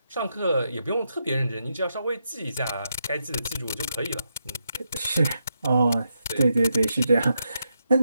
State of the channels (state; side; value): inverted; both; correlation -0.83